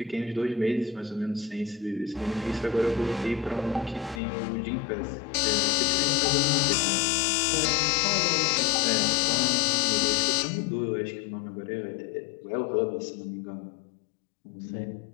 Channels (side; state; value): right; drops out; at 4.2 s